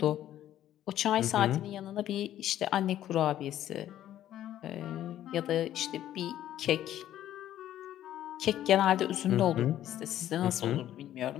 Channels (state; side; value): quieter; right; 12.2 dB